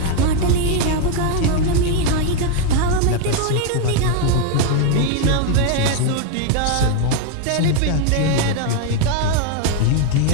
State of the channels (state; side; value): different; both; correlation 0.01